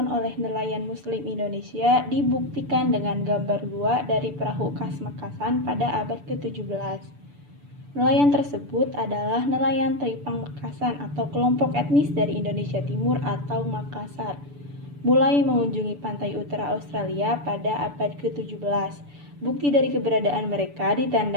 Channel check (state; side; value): late; left; 6.9 ms